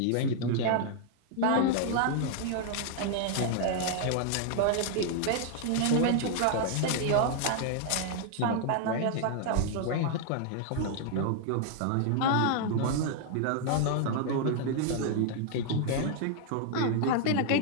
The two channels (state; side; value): different; both; correlation 0.00